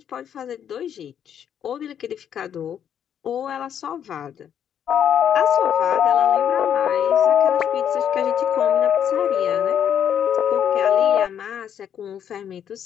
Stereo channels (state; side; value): quieter; right; 9.1 dB